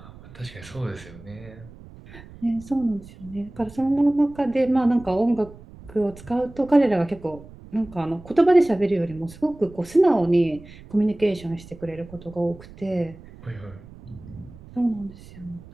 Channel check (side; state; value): right; noise; rumble, 19 dB below the sound